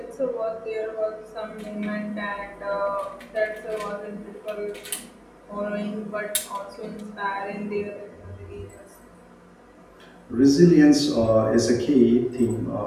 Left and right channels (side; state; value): both; identical; correlation 1.00